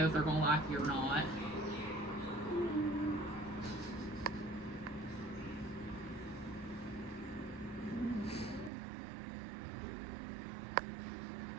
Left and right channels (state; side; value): drops out; left; at 8.7 s